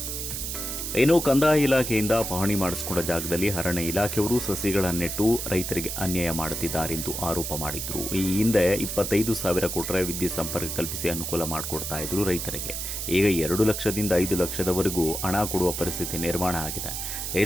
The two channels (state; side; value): noise; right; hiss, 4 dB below the sound